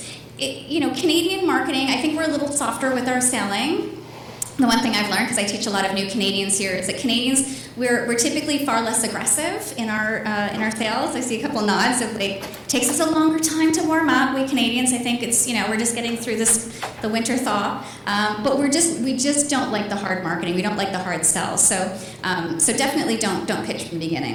Canadian marketing, I think we're a little softer with our selling. The one thing I've learned, because I teach a lot of new Canadians here, is that Canadians, we're typically far less aggressive in our sales. I see a couple nods of like, takes us a longer time to warm up. We Canadians, I think it's, we're just getting through the winter thaw. But we just don't like the hard marketing. We don't like the hard sells. So definitely don't pitch from the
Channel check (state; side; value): identical; both; correlation 1.00